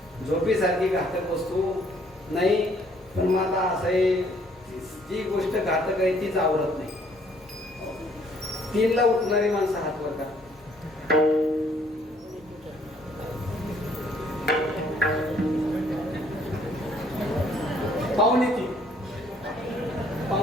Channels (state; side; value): normal; both; correlation 0.63